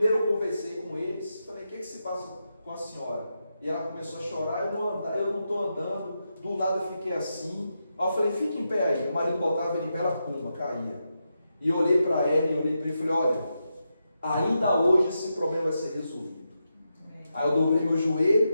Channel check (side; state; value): both; inverted; correlation -0.86